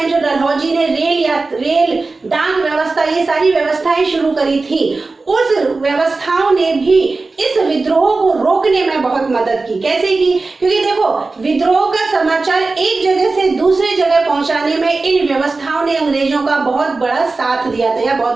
जो डलहौजी ने रेल डाक व्यवस्था, ये सारी व्यवस्थाएं शुरू करी थी, उस व्यवस्थाओं ने भी इस विद्रोह को रोकने में बहुत मदद की। कैसे की? क्योंकि देखो, विद्रोह का समाचार एक जगह से दूसरी जगह पहुंचाने में इन व्यवस्थाओं ने अंग्रेजों का बहुत बड़ा साथ दिया था या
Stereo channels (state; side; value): quieter; left; 3.7 dB